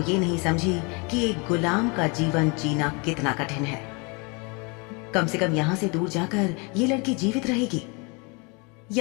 ये नहीं समझी कि एक गुलाम का जीवन जीना कितना कठिन है। कम से कम यहां से दूर जाकर ये लड़की जीवित रहेगी।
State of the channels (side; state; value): right; quieter; 30.9 dB